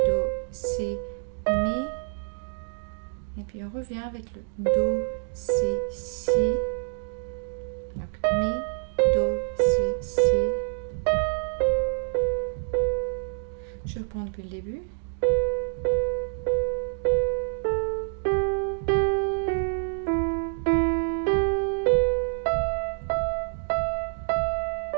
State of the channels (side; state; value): left; silent; 60 dB below the other